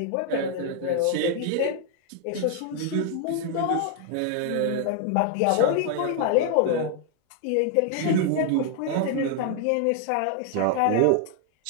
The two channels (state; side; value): different; both; correlation 0.00